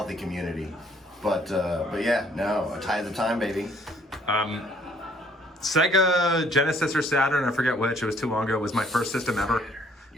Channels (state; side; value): normal; both; correlation 0.63